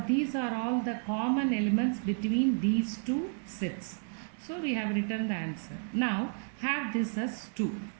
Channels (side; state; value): left; silent; 57 dB below the other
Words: these are all the common elements between these two sets. So we have written the answer. Now have this as 2.